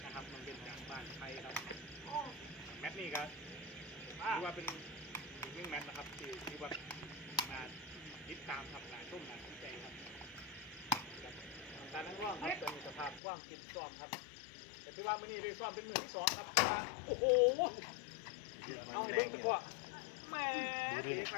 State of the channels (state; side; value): drops out; right; at 13.2 s